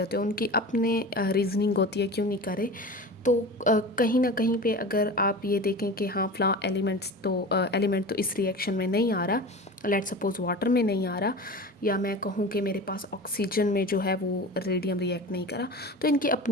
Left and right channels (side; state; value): both; normal; correlation 0.33